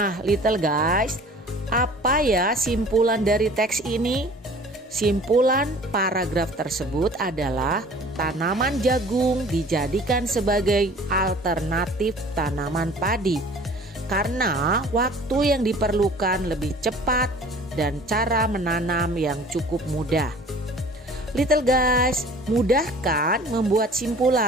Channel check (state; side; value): normal; both; correlation 0.48